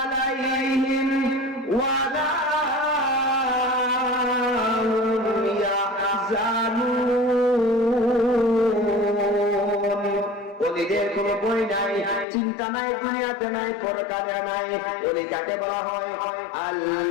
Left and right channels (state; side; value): drops out; right; at 12.2 s